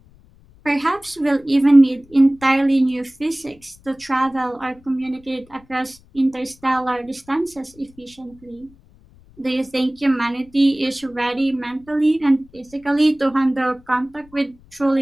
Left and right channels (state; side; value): noise; left; rumble, 27 dB below the sound